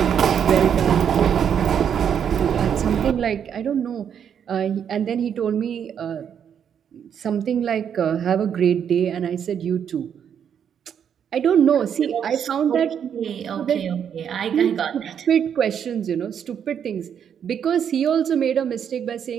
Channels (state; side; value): quieter; left; 8.3 dB